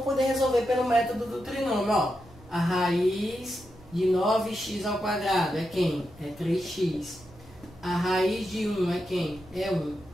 poder resolver pelo método do trinômio, ó. A raiz de 9x ao quadrado é quem? É 3x. A raiz de 1 é quem? É 1.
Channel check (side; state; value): right; noise; rumble, 23 dB below the sound